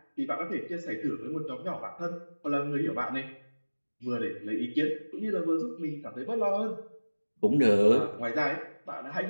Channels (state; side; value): inverted; both; correlation -1.00